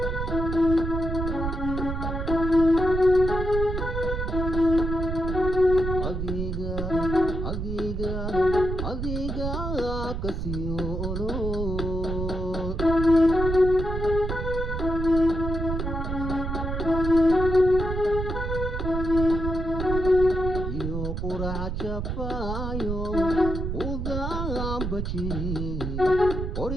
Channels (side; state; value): right; noise; rumble, 3 dB below the sound